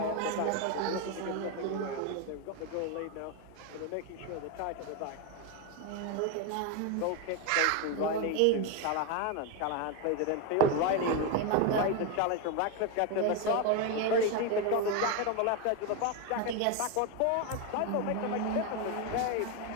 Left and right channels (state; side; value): different; both; correlation 0.02